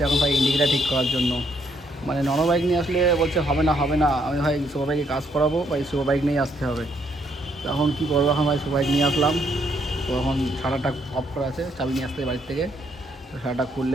এখন ভাই ইন্ডিকেটার ঠিক করার জন্য। মানে নন বাইক নিয়ে আসলে বলছে হবে না হবে না, আমি ভাই সুপার বাইকে কাজ করাবো, ভাই সুপার বাইক নিয়ে আসতে হবে। তো এখন কী করবো, এখন ভাই সুপার বাইক নিয়ে আসলাম। তো এখন শাটারটা অফ করা আছে, চাবি নিয়ে আসতে বাড়ির থেকে। তো শাটারটা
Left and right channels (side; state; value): both; normal; correlation 0.72